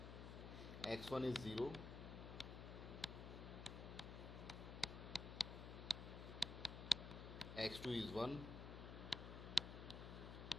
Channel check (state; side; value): noise; left; hum, 7 dB below the sound